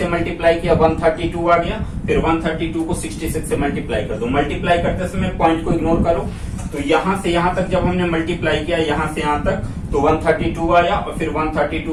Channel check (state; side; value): identical; both; correlation 1.00